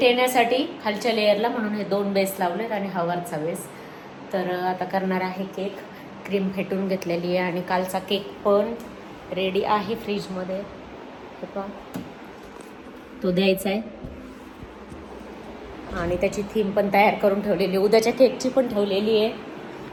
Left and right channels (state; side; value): identical; both; correlation 1.00